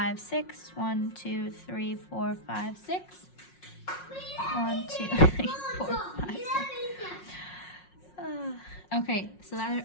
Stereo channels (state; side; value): late; right; 5.5 ms